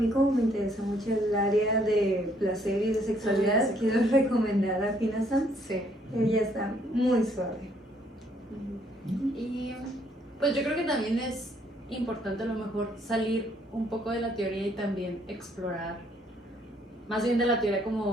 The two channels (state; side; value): normal; both; correlation 0.67